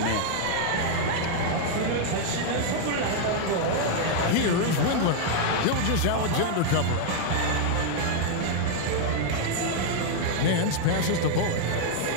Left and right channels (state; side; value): different; both; correlation 0.00